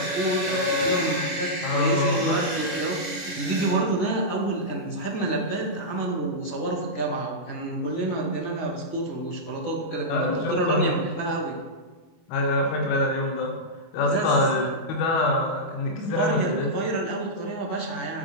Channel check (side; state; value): right; late; 24 ms